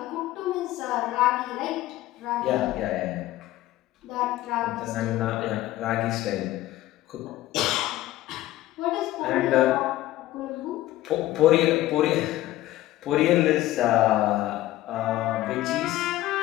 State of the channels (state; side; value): quieter; right; 15.6 dB